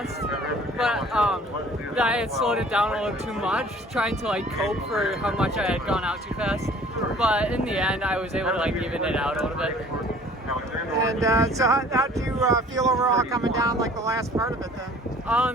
but I had slowed it down a little too much, trying to like cope for how much I had gone out too fast. But in the end, I was able to like even it out a little bit. And so how did you feel overall coming down like the last part of it then?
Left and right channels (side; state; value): both; normal; correlation 0.51